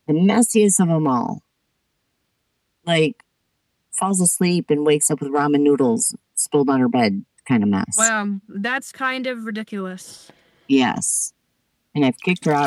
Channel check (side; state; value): both; identical; correlation 1.00